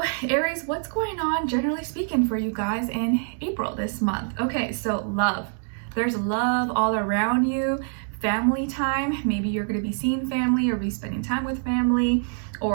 Aries, what's going on generally speaking for you guys in April this month? Okay, so love. There's love all around you. Family time, maybe you're going to be seeing family or be spending time with family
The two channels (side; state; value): left; silent; 62 dB below the other